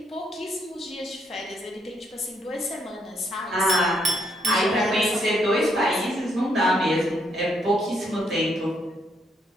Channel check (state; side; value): normal; both; correlation 0.74